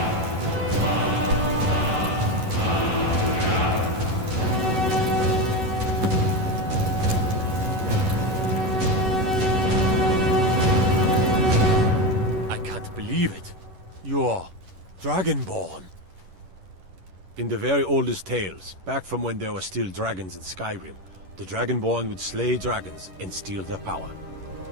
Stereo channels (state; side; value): late; left; 11 ms